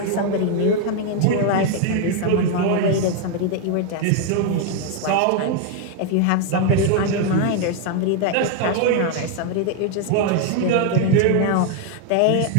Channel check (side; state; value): both; different; correlation 0.00